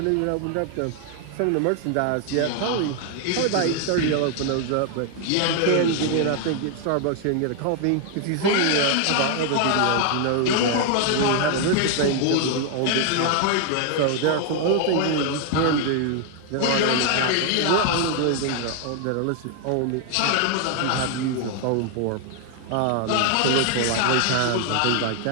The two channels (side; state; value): both; different; correlation 0.00